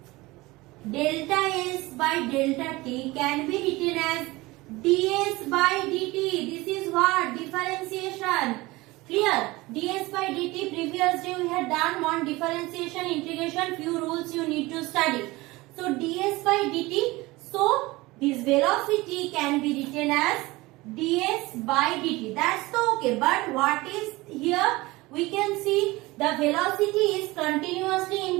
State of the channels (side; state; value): left; quieter; 21.0 dB